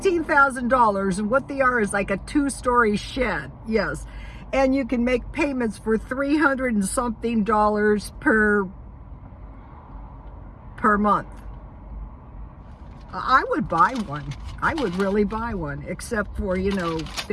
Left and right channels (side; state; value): both; identical; correlation 1.00